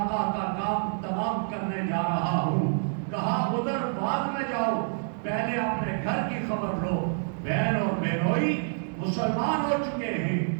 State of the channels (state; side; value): silent; left; digital silence